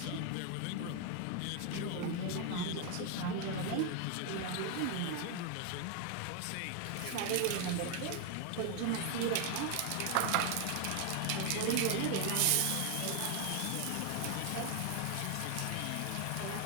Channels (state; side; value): different; both; correlation 0.01